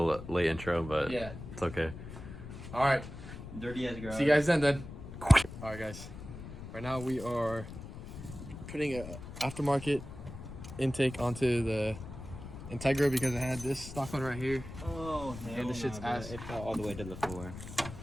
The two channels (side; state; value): left; noise; rumble, 11 dB below the sound